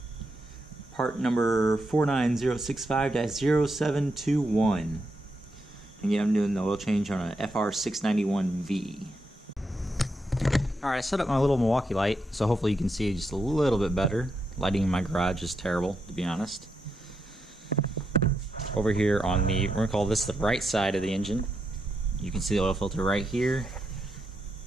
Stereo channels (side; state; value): both; normal; correlation 0.83